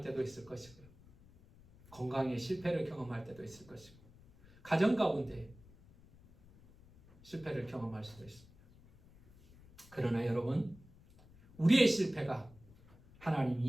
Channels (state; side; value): noise; left; rumble, 24 dB below the sound